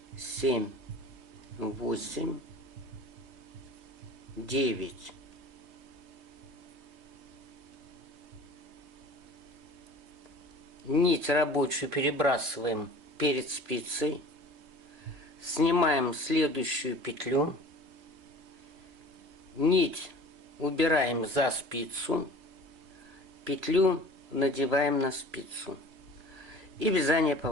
7, 8, 9. Нить рабочую перебрасываем перед спицей, снимаем следующую петлю, нить убираем за спицу, петлю надеваем на спицу и вязание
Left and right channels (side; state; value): left; late; 3.0 ms